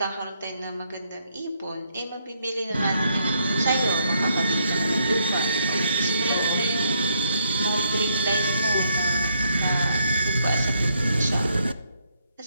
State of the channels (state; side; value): inverted; both; correlation -0.74